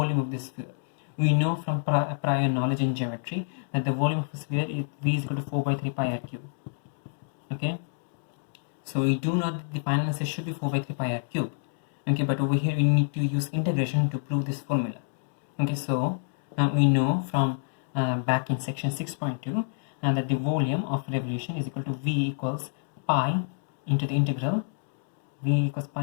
of this sphere. We know from prior knowledge in geometry that the volume of a sphere is v is equal to 4 by 3 pi r cube. Okay, so we do know that the final answer should be 4 by 3 pi r cube. Okay, but over here we need to use integration to prove this formula. Okay, so we know from back in section 6.2 that the volume of revolution is equal to v equals pi into the integral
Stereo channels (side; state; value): right; silent; digital silence